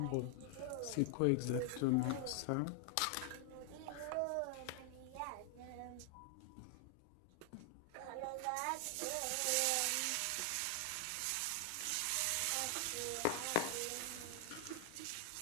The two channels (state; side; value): different; both; correlation 0.00